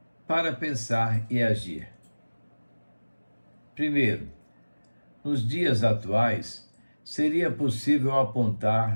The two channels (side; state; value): both; inverted; correlation -1.00